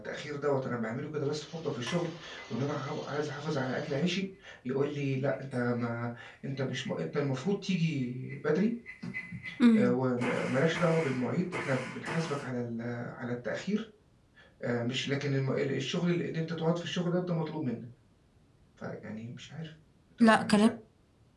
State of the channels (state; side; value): identical; both; correlation 1.00